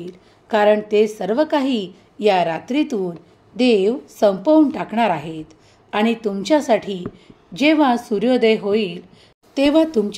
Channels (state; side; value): identical; both; correlation 1.00